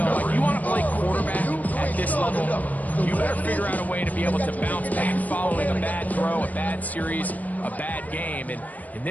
Like, you want to play quarterback at this level, you better figure out a way to be able to bounce back following a bad throw, a bad series, a bad game. And in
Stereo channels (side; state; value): right; late; 0.077 ms